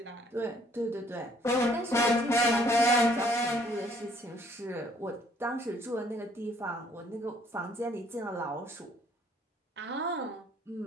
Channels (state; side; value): normal; both; correlation 0.63